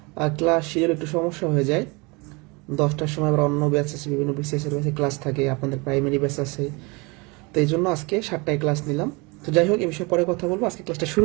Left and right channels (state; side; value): quieter; left; 27.4 dB